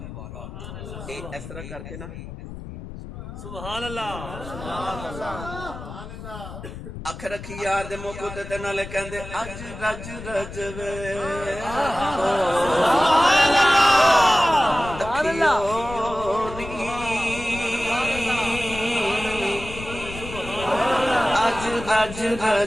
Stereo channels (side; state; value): left; noise; rumble, 11 dB below the sound